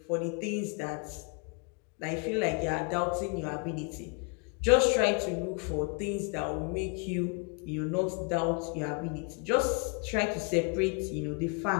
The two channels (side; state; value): right; quieter; 34.4 dB